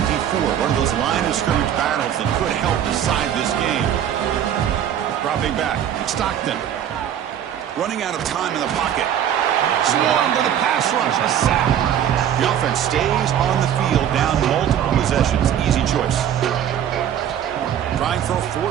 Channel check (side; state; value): left; quieter; 9.9 dB